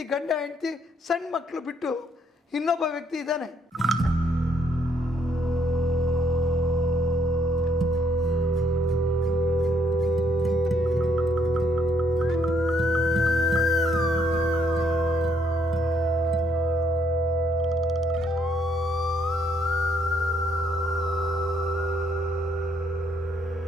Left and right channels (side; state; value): both; normal; correlation 0.70